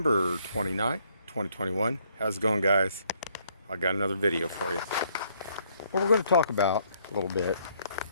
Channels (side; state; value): both; inverted; correlation -0.68